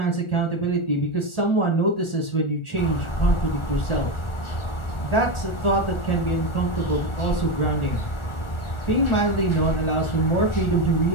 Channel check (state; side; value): late; right; 1.4 ms